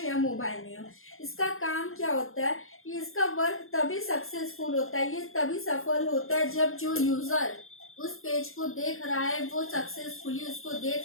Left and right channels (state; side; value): late; right; 0.61 ms